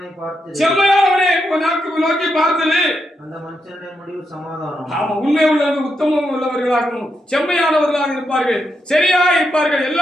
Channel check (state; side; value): normal; both; correlation 0.83